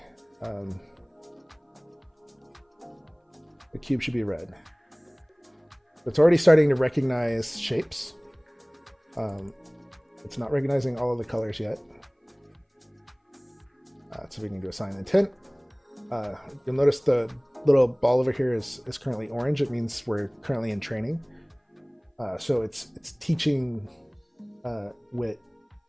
the cube should be red. It's already starting to recognize shapes. It's not recognizing all of the colors yet. So we can do assign intent. You'll notice the little ball over here is currently orange. It means we're currently in training. So it's teaching Wit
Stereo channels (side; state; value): both; identical; correlation 1.00